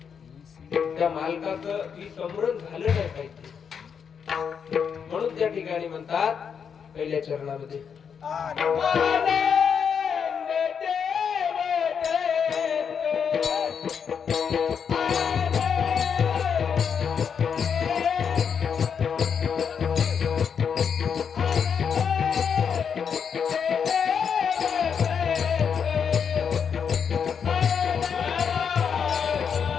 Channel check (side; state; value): right; quieter; 7.0 dB